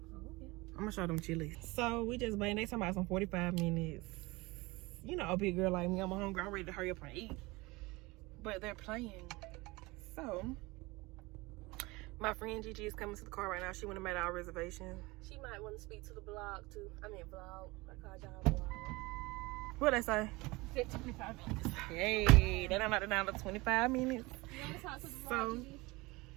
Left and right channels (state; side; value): quieter; left; 22.9 dB